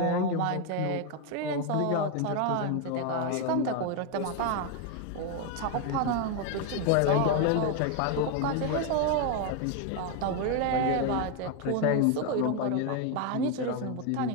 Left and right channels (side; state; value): both; different; correlation 0.01